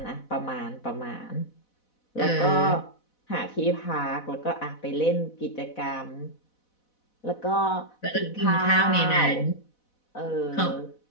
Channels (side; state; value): right; late; 4.1 ms